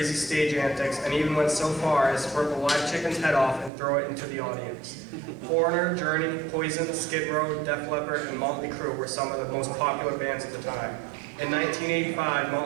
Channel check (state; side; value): drops out; left; at 3.7 s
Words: stage antics and even went so far as to rip a live chicken's head off and throw it into the audience. Foreigner, Journey, Poison, Skid Row, Def Leppard, and Motley Crue were some of the most popular bands at the time. In 1985,